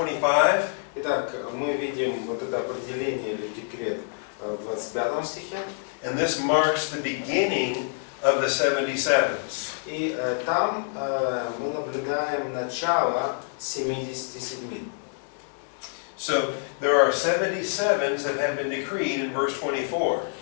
Итак, мы видим вот это определение или декрет в 25 стихе. And this marks the beginning of the 77s. И там мы наблюдаем начало 77. So there are 77s that have been decreed in verse 24.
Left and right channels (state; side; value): silent; right; 60 dB below the other